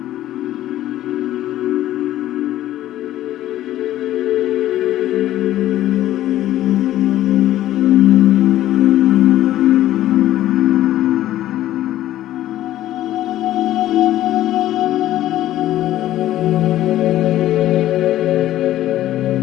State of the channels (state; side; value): quieter; right; 13.7 dB